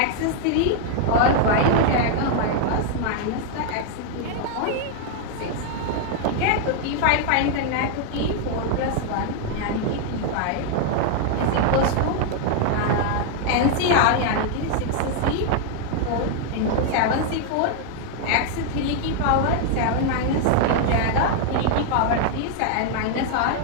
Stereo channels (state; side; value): different; both; correlation 0.00